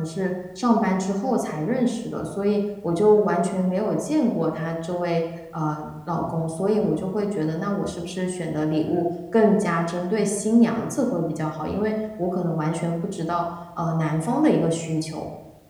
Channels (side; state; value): both; identical; correlation 1.00